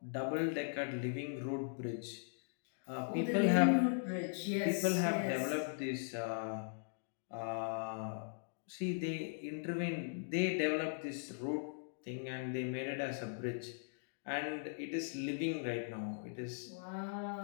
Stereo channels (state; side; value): silent; right; digital silence